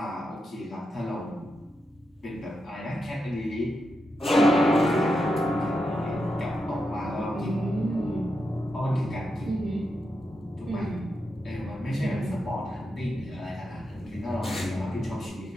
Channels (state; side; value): normal; both; correlation 0.86